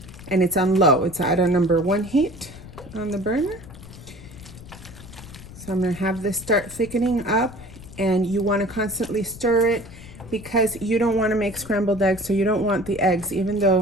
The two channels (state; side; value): noise; left; rumble, 16 dB below the sound